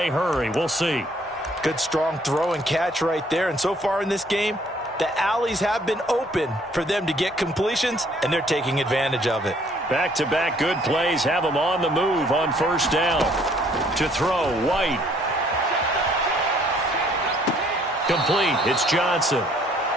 hurry. We'll see. Good strong throw and catch right there. And so far in this game, the alleys have been open for them to get completions, and they're taking advantage of it. Back-to-back good plays have them on the move on first down. To throw, White. Complete. It's Johnson.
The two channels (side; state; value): both; normal; correlation 0.62